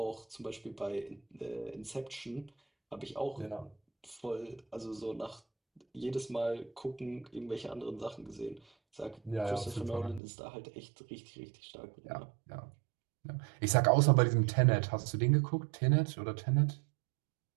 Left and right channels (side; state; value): left; drops out; at 10.2 s